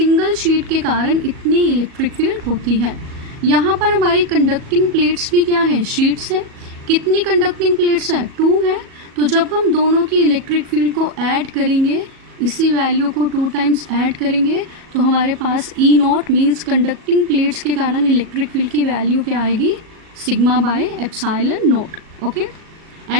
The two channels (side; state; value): left; late; 37 ms